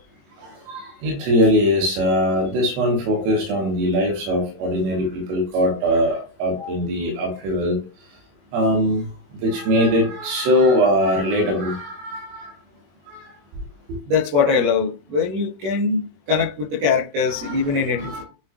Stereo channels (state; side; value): late; left; 21 ms